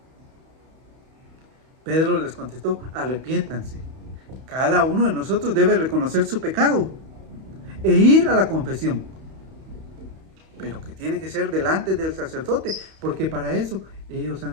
Pedro les contestó, arrepiéntanse. Cada uno de nosotros debe reconocer su pecado e ir a la confesión. pero que tiene que ser delante del sacerdote, porque para eso ellos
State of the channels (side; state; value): left; late; 31 ms